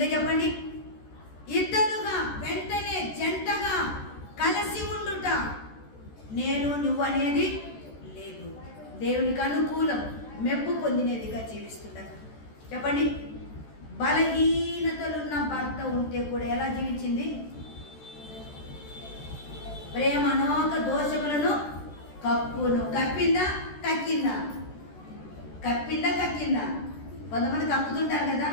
చెప్పండి, ఇద్దరుగా వెంటనే జంటగా కలిసి ఉండుట, నేను నువ్వు అనేది లేదు, దేవునికి అనుకూలం మెప్పు పొందినదిగా జీవిస్తుంటా. చెప్పండి, బలహీనతలున్న భర్త ఉంటే కూడా ఎలా జీవించింది? ప్రేమ అనేక దోషములను కప్పును. కప్పిందా కక్కిందా? కప్పిందా కక్కిందా? కొంతమంది కప్పుతుంటారు కదా,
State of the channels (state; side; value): late; right; 14 ms